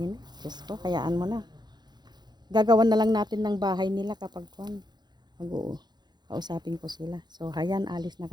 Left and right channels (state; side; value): late; left; 0.21 ms